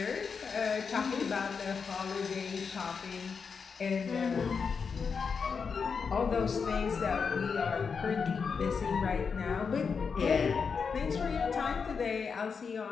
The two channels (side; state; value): right; quieter; 5.7 dB